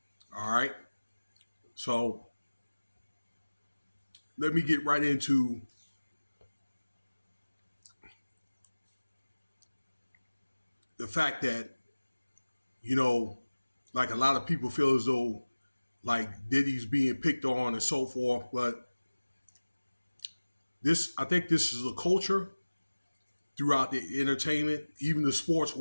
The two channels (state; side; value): inverted; both; correlation -1.00